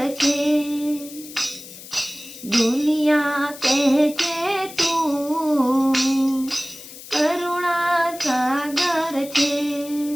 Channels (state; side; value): noise; left; hiss, 15 dB below the sound